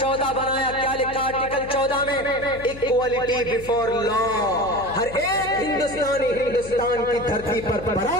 बनाया। क्या लिखा आर्टिकल 14 में? इक्वालिटी बिफोर लॉ, हर एक हिंदुस्तानी हिंदुस्तान की धरती पर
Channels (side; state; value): left; noise; hum, 15 dB below the sound